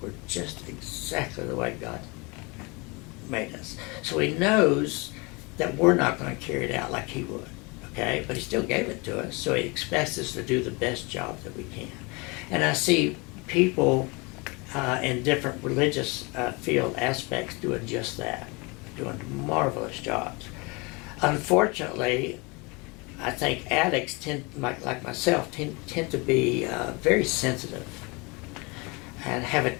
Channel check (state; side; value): quieter; right; 27.8 dB